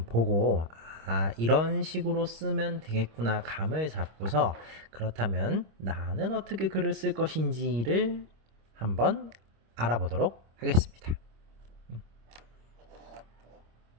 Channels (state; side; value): late; left; 26 ms